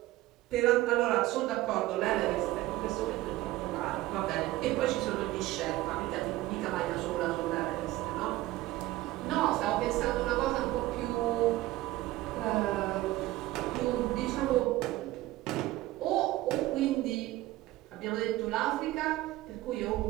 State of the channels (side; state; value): left; quieter; 17.0 dB